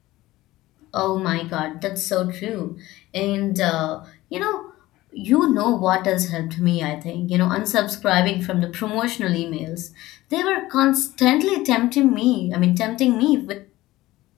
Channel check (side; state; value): right; quieter; 17.4 dB